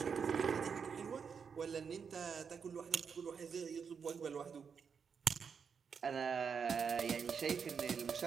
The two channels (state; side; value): quieter; left; 6.3 dB